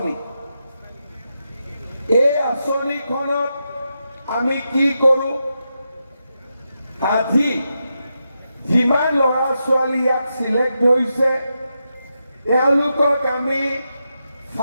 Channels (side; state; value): both; inverted; correlation -0.86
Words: এই আঁচনিখনত আমি কি কৰোঁ, আজি যিমান ল'ৰা ছোৱালী ইয়াত চিলেক্ট হৈছে তেওঁলোকক আমি